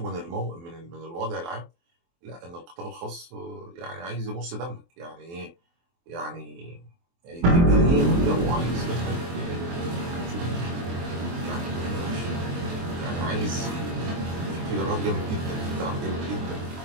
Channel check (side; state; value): left; late; 23 ms